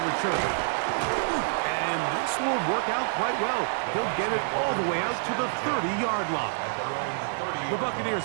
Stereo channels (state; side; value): silent; left; 60 dB below the other